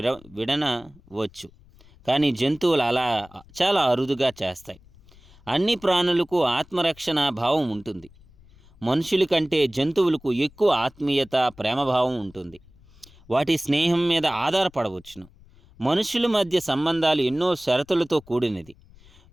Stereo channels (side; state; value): left; noise; rumble, 26 dB below the sound